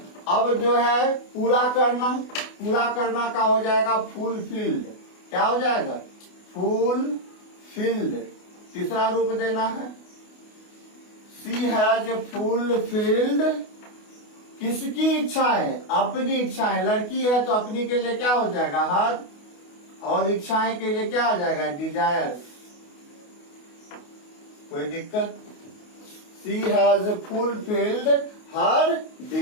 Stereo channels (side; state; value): right; late; 28 ms